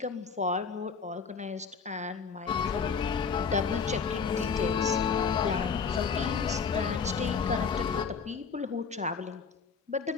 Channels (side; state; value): right; quieter; 5.6 dB